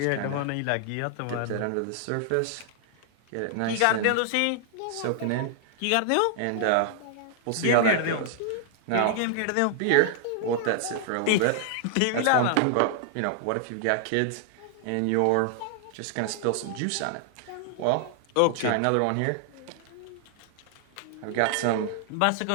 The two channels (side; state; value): both; different; correlation 0.00